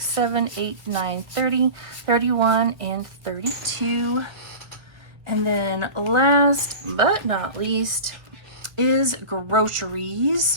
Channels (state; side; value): late; left; 1.3 ms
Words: 7, 8, 9, 30, 31, and 32. And then last but not least is